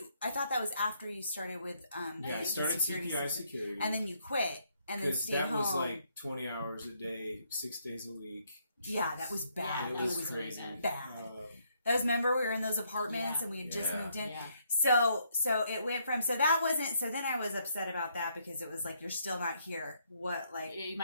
I thought that was after you started with I started CPI security. and then you quit and then stayed home. That was like 20 hours a day, 6 days a week. Yeah, that was bad. Yeah, it was crazy. Bad. Remember we were in those apartments and we had just moved in. Yeah. So it went from so then I was upset about that because it was like you're still not here. What like you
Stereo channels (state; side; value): inverted; both; correlation -0.72